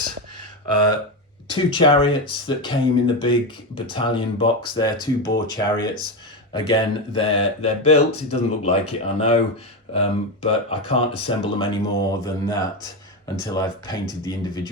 2 chariots that came in the big battalion box there, 2 boar chariots. Again, they're built. It doesn't look like it, I know, but I can't assemble them any more than that until I've painted the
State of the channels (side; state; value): both; normal; correlation 0.14